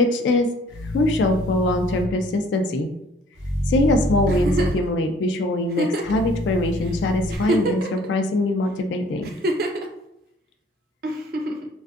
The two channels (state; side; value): normal; both; correlation 0.57